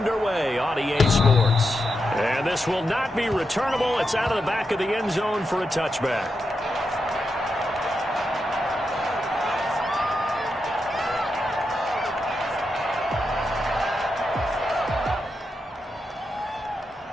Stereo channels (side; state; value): both; normal; correlation 0.86